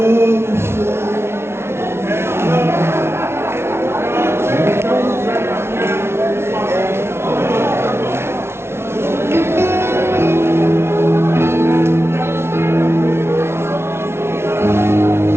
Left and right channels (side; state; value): left; late; 0.12 ms